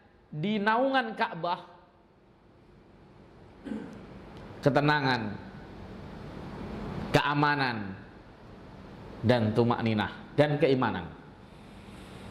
di naungan Ka'bah, ketenangan, keamanan, dan tumakninah, dan keimanan.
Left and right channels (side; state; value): both; identical; correlation 1.00